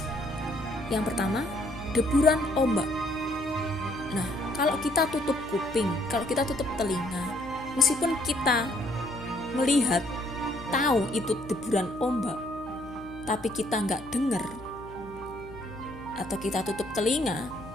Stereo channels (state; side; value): noise; left; hum, 17 dB below the sound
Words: Yang pertama, deburan ombak. Nah, kalau kita tutup kuping, kalau kita tutup telinga, meskipun kita melihat, tahu itu deburan ombak, tapi kita nggak dengar, atau kita tutup telinga,